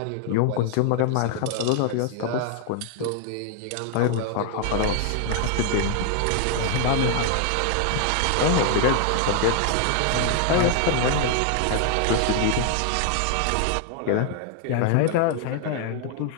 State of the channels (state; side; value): different; both; correlation 0.00